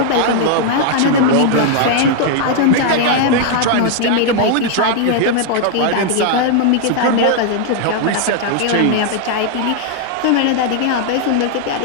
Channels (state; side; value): different; both; correlation 0.00